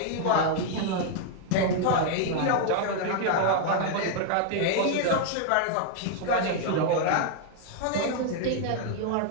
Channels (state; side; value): different; both; correlation 0.00